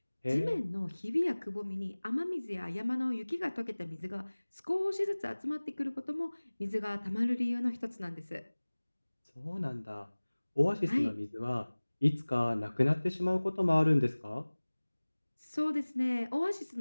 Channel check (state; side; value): inverted; both; correlation -1.00